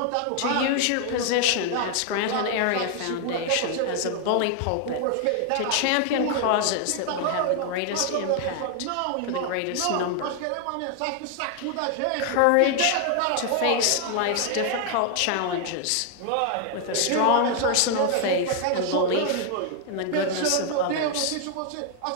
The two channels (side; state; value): both; different; correlation 0.00